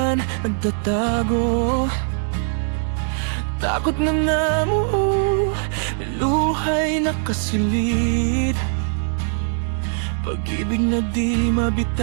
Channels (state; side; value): silent; left; digital silence